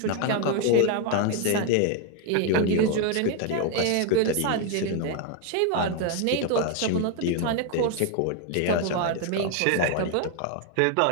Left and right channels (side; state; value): both; different; correlation 0.01